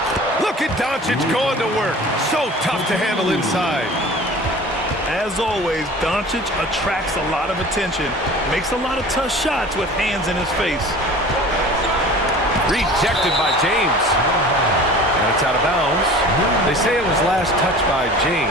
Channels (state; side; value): normal; both; correlation 0.42